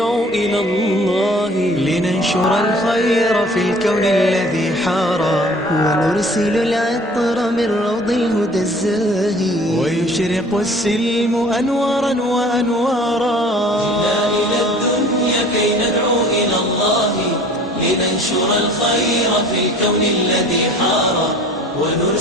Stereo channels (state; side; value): normal; both; correlation 0.49